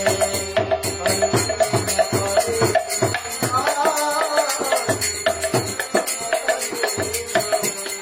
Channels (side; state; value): both; identical; correlation 1.00